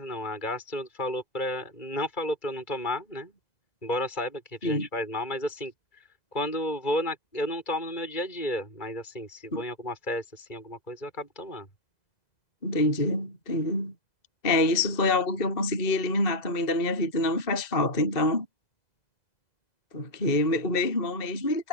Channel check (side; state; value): right; late; 2.0 ms